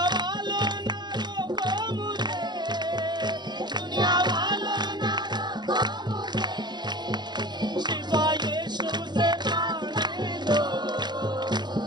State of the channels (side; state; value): left; late; 0.21 ms